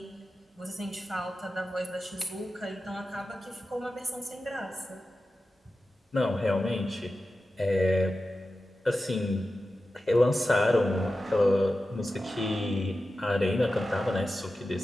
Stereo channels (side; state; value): both; normal; correlation 0.93